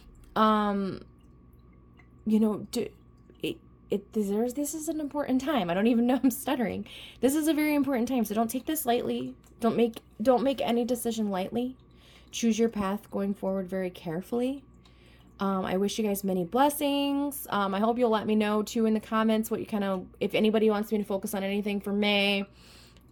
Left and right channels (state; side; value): identical; both; correlation 1.00